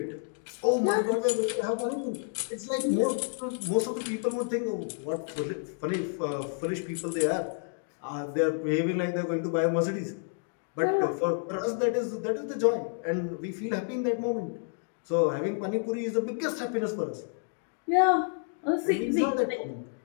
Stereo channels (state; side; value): silent; right; 58 dB below the other